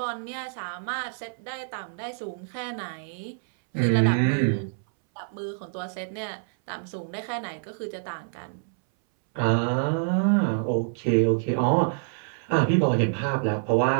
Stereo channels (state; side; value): silent; left; 60 dB below the other